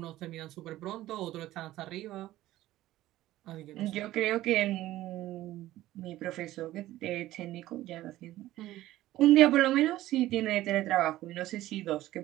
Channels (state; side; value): quieter; left; 15.3 dB